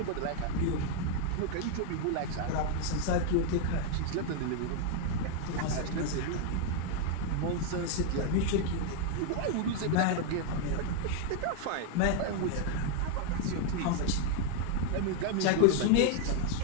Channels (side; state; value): both; different; correlation 0.00